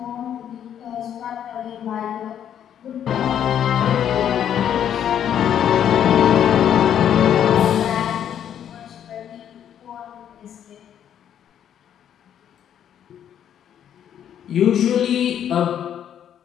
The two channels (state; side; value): quieter; right; 9.6 dB